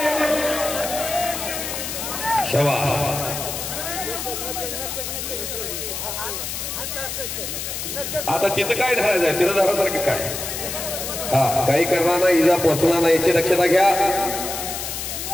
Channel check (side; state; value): left; noise; hiss, 5 dB below the sound